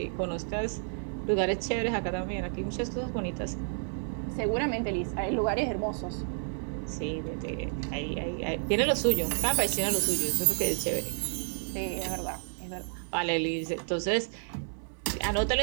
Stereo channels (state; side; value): silent; left; 57 dB below the other